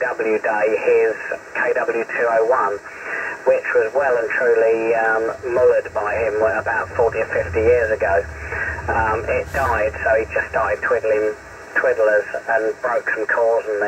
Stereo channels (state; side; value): identical; both; correlation 1.00